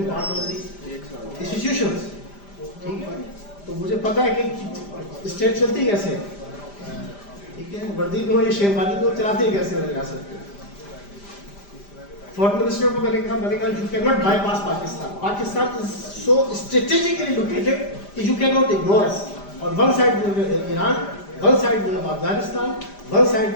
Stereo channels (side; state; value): right; late; 5.0 ms